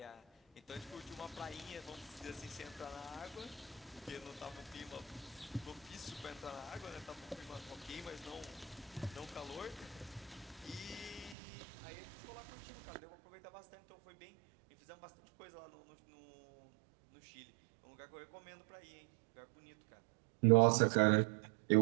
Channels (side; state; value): left; drops out; at 11.4 s